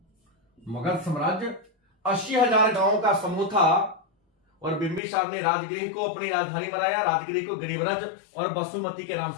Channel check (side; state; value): right; drops out; at 5.0 s